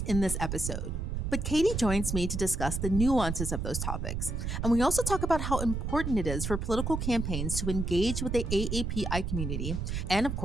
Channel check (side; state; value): right; noise; rumble, 2 dB below the sound